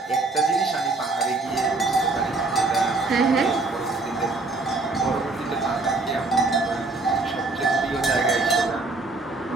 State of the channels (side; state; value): left; quieter; 3.4 dB